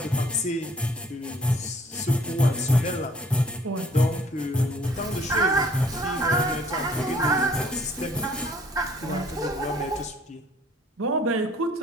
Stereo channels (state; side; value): normal; both; correlation 0.59